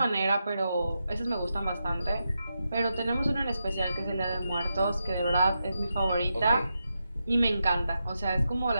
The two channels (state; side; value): inverted; both; correlation -0.87